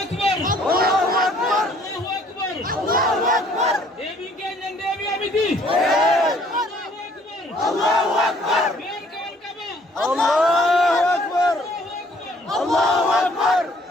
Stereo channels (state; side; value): normal; both; correlation 0.60